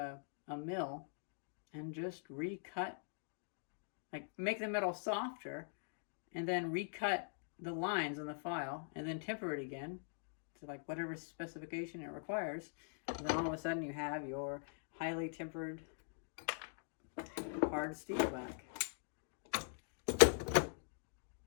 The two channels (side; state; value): right; silent; digital silence